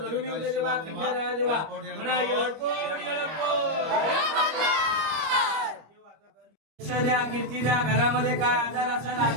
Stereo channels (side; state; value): left; late; 25 ms